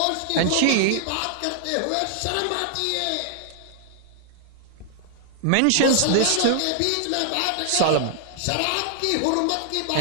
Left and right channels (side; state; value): both; different; correlation -0.01